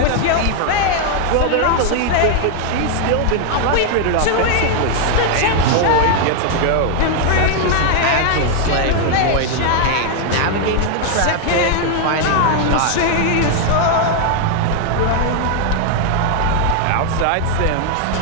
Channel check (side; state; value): both; different; correlation 0.00